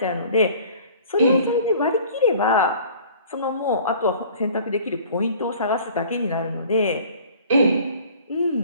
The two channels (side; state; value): both; inverted; correlation -0.49